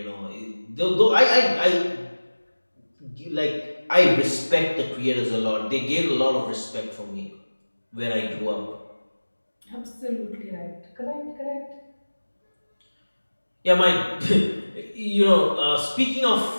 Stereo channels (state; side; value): inverted; both; correlation -1.00